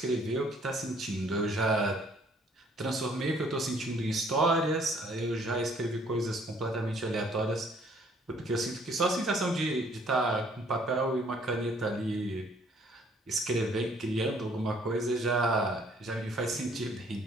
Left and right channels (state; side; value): normal; both; correlation 0.61